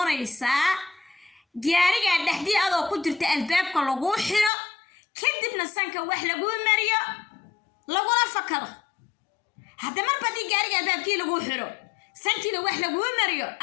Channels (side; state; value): right; drops out; at 4.5 s